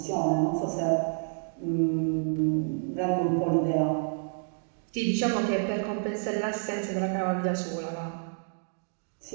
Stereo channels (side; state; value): left; silent; digital silence